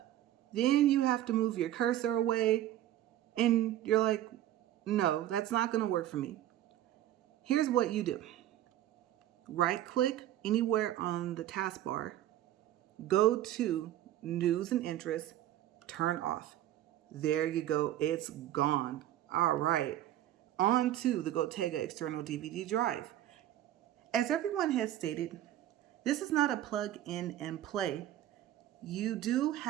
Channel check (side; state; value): left; quieter; 12.7 dB